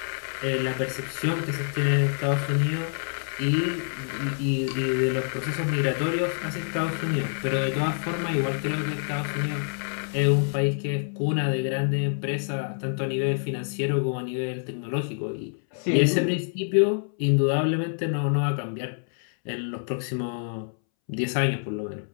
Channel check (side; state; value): right; silent; 60 dB below the other